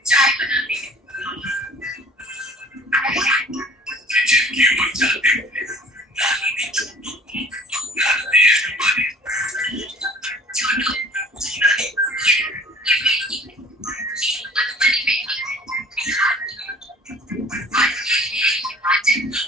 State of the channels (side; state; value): both; normal; correlation 0.49